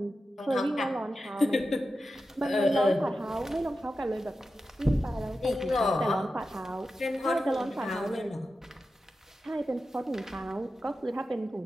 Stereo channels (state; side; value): normal; both; correlation 0.91